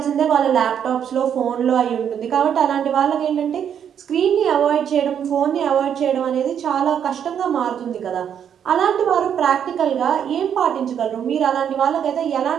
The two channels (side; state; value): left; quieter; 8.6 dB